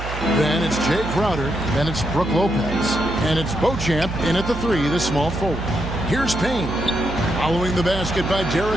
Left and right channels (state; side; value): noise; right; hum, 7 dB below the sound